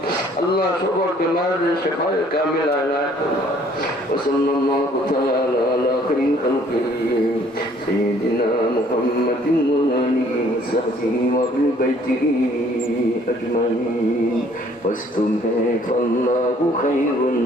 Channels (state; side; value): normal; both; correlation 0.59